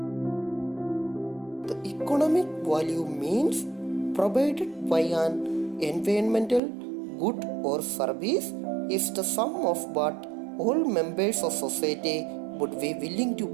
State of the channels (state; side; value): drops out; left; at 6.6 s